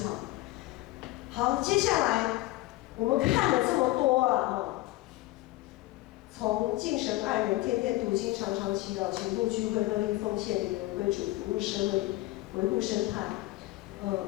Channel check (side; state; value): right; quieter; 18.4 dB